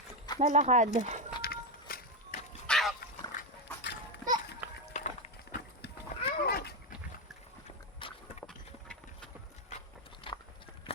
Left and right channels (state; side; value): normal; both; correlation 0.08